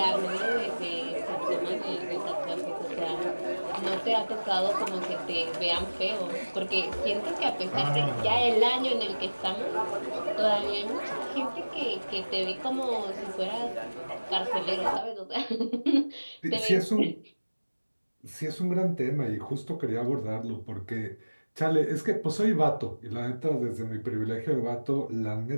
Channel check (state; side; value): inverted; both; correlation -1.00